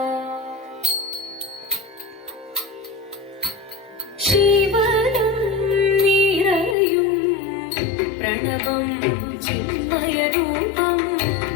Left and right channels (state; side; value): drops out; right; at 6.8 s